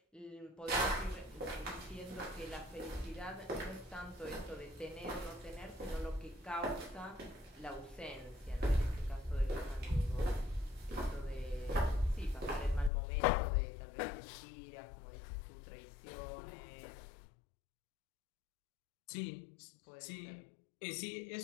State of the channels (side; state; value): right; drops out; at 12.9 s